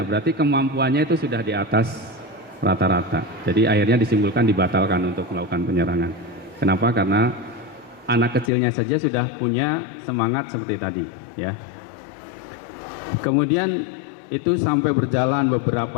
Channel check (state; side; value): drops out; right; at 8.5 s